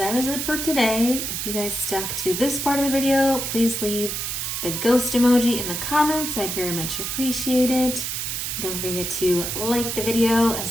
is it for today. If you guys stuck to this part of the video, please leave the ghost emoji in the comments. I'd very much appreciate it. Don't forget to like the video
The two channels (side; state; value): right; noise; hiss, 3 dB below the sound